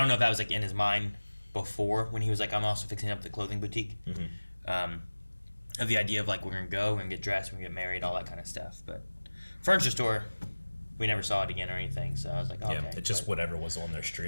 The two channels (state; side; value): inverted; both; correlation -1.00